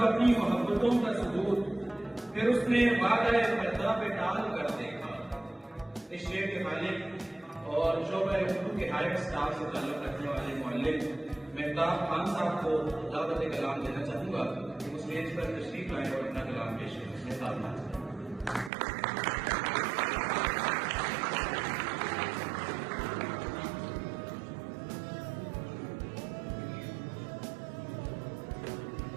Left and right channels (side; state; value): left; drops out; at 18.7 s